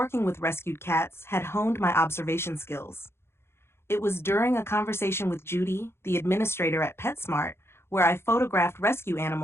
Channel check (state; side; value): late; right; 0.12 ms